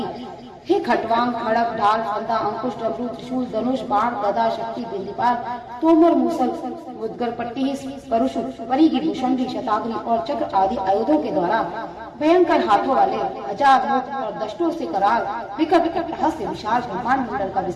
हे खटवांग, खड़क, ढाल, फंदा, अंकुश, डमरू, त्रिशूल, धनुष, बाण, गदा, शक्ति, बिंदीपाल, तोमर, मूसल, मुद्गर, पट्टी, परुष, परिघी, भूषणी, शताग्नि और चक्र आदि आयुधों के द्वारा भयंकर हाथों वाले, हजार मुख और दष्टों से कराल, विकट अट्टहास से विशाल ब्रह्मांड मंडल का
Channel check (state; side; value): identical; both; correlation 1.00